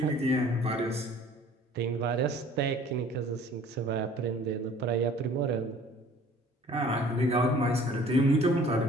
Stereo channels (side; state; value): both; normal; correlation 0.51